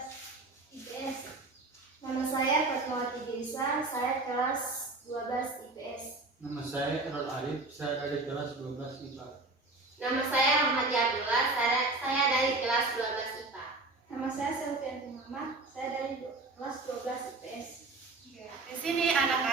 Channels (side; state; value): left; quieter; 3.2 dB